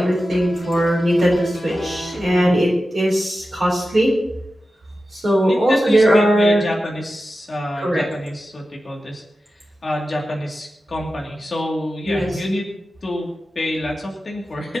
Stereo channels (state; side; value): normal; both; correlation 0.93